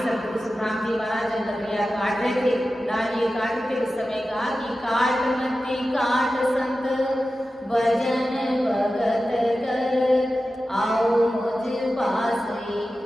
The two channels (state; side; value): normal; both; correlation 0.93